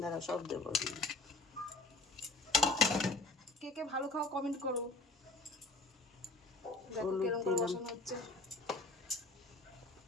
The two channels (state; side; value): quieter; right; 3.1 dB